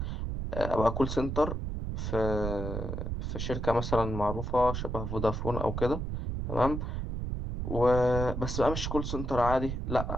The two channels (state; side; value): noise; right; rumble, 3 dB below the sound